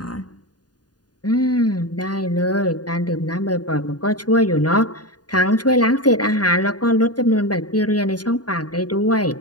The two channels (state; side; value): late; right; 0.69 ms